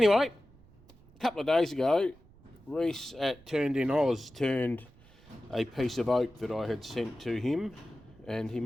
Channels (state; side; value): noise; right; rumble, 25 dB below the sound